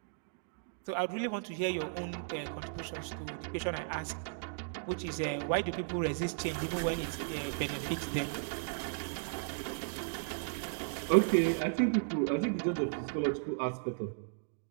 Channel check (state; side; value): silent; left; digital silence